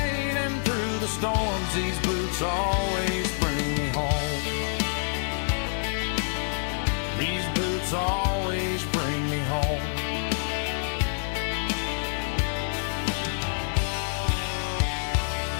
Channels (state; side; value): silent; right; 60 dB below the other